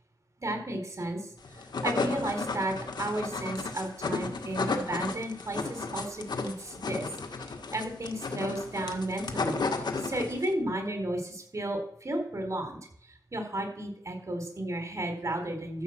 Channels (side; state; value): both; normal; correlation 0.69